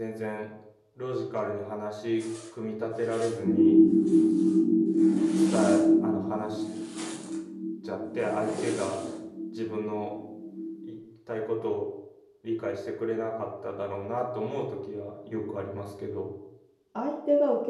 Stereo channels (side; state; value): both; identical; correlation 1.00